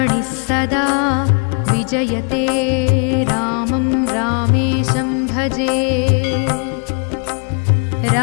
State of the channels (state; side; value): quieter; right; 37.2 dB